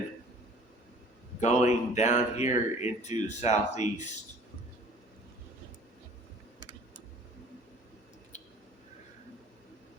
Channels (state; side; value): normal; both; correlation 0.49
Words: going down here into the Southeast.